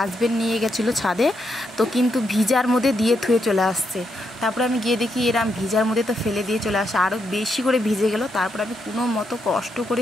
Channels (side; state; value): both; normal; correlation 0.80